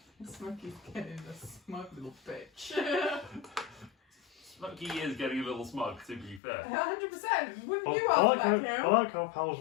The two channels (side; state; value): right; drops out; at 6.4 s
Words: Smokey's getting a smug little bitch. Smokey is getting a little smug, to be fair. 100%. Wouldn't you I have like, that, how, Kim? I like how Pal's